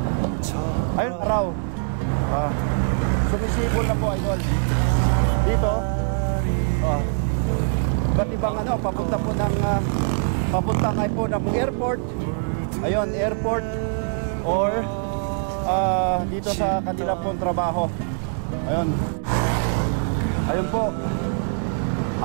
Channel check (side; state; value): left; silent; 63 dB below the other